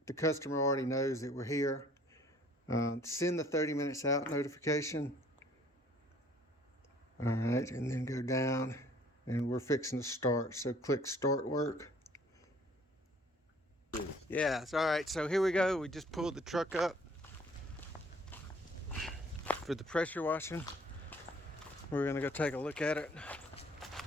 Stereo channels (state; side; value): normal; both; correlation 0.56